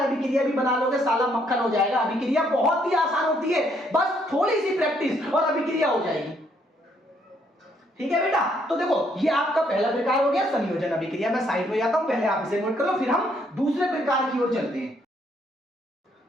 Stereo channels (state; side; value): normal; both; correlation 0.70